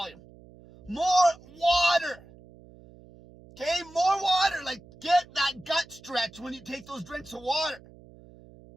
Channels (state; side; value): noise; right; hum, 23 dB below the sound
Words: More water. Okay, more water. Like, get that gut stretch when you take those drinks of water.